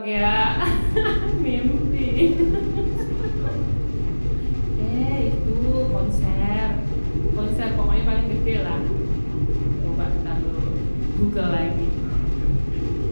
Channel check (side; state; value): both; inverted; correlation -1.00